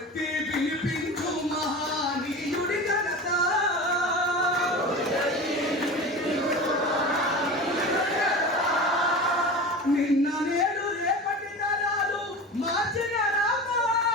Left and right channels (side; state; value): both; normal; correlation 0.32